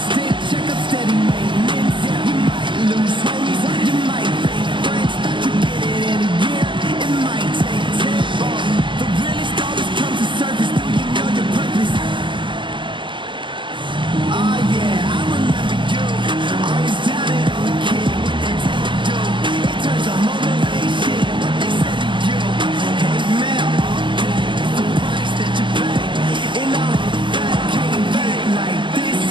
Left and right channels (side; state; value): left; late; 0.24 ms